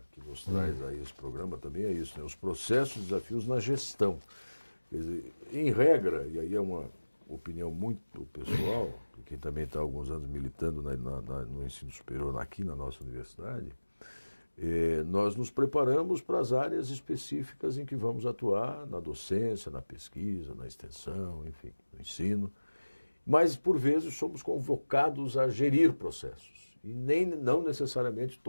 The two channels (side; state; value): both; inverted; correlation -1.00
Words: que nos traz aí esse programa também é isso, né? Os processos e desafios na gestão. Quer dizer, em regra, e aí é uma opinião muito pessoal, de quem também está há alguns anos militando no ensino superior aqui na nossa universidade, nós nos preparamos para as áreas específicas em que vamos atuar, na docência, na pesquisa, na extensão, enfim, no ensino. Mas, por vezes, somos convocados a gerir processos. E não necessariamente